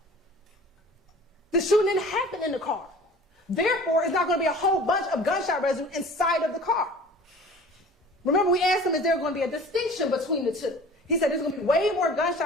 The shooting didn't happen in the car. Therefore, it's not going to be a whole bunch of gunshot residue inside of the car. Remember, we asked him, is there going to be a distinction between the two? He said there's going to be way more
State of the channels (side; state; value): both; normal; correlation 0.45